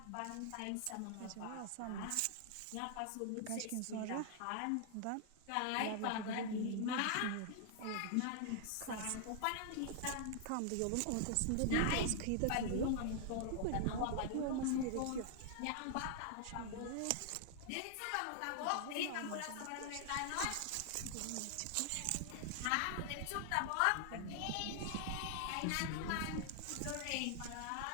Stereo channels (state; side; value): different; both; correlation 0.00